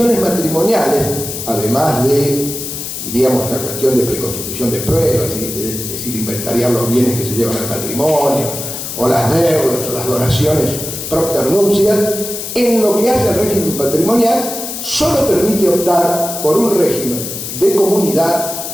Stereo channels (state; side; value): noise; left; hiss, 7 dB below the sound